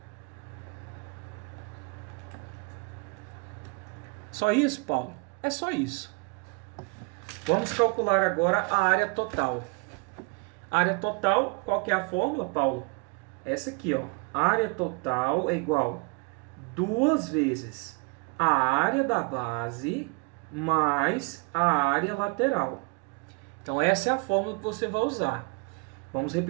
Só isso, Paulo? É só isso. Vamos calcular agora a área total. Área total, qual que é a fórmula, Paulo? Essa aqui, ó. Área total é igual 2 vezes a área da base mais a área lateral. Então, essa é a fórmula que você vai usar. Vamos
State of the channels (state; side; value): quieter; left; 30.8 dB